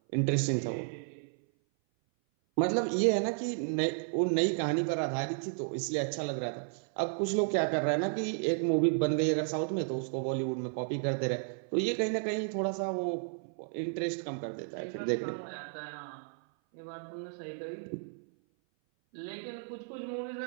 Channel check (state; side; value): silent; left; 56 dB below the other